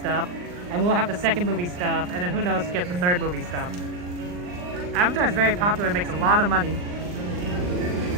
and we'll have the second movie stuff, and then who knows who gets the third movie stuff. Avatar's very popular, makes a lot of money.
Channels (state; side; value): late; left; 39 ms